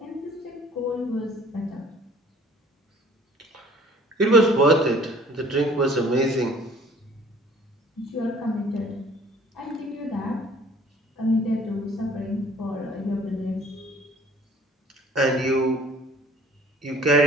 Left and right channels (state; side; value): normal; both; correlation 0.53